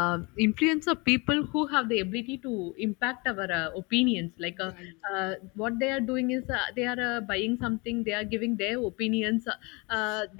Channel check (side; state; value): right; quieter; 28.2 dB